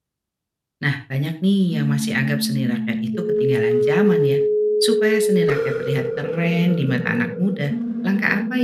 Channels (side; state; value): both; identical; correlation 1.00